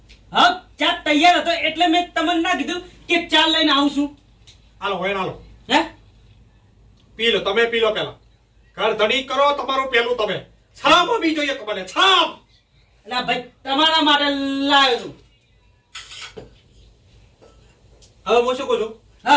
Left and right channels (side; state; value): both; identical; correlation 1.00